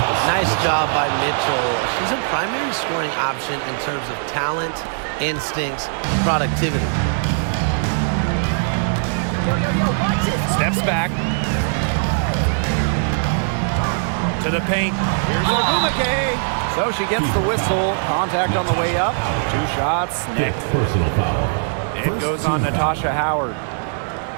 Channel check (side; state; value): left; silent; digital silence